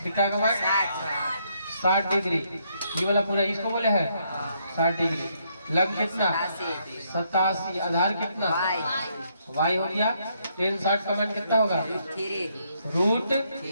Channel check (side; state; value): both; inverted; correlation -0.73